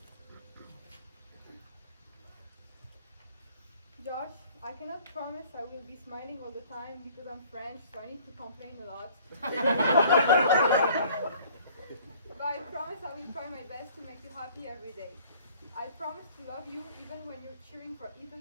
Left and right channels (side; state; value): both; inverted; correlation -0.54